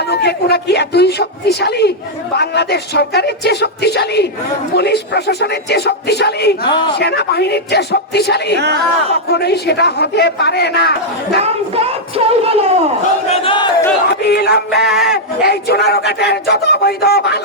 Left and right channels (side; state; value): both; normal; correlation -0.05